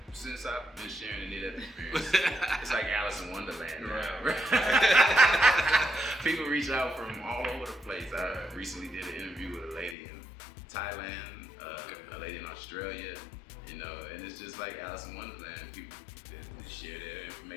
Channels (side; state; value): right; drops out; at 10.0 s